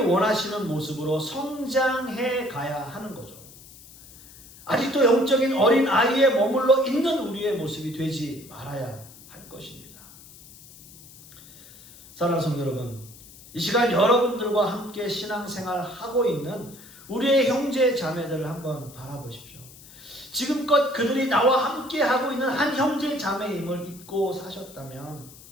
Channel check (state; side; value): noise; left; hiss, 20 dB below the sound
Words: 모습으로 성장해 가야 하는 거죠. 아직도 영적인 어린 아이에 머물러 있는 우리의 모습이 되지 말아야 할 것입니다. 사랑하는 성도 여러분, 이 시간 여러분들과 함께 신앙생활 하고 있는 우리의 형제 자매들을 한번 바라보십시오. 지금껏 그들이 나와 함께 하고 있는 한 형제 자매임을 잊고 사셨다면